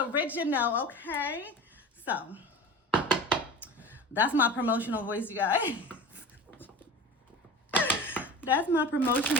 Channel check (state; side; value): normal; both; correlation 0.34